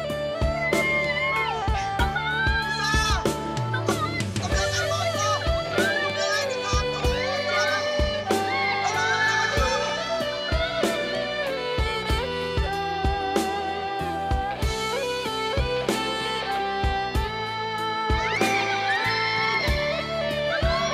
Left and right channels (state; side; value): identical; both; correlation 1.00